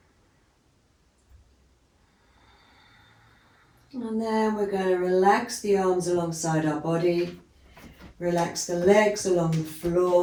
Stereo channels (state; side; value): identical; both; correlation 1.00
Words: And then we're going to relax the arms alongside our body. Relax the legs along the